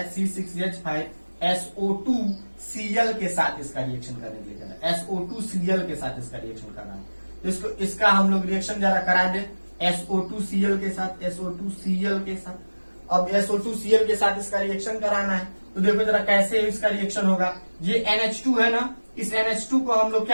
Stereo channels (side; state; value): both; inverted; correlation -1.00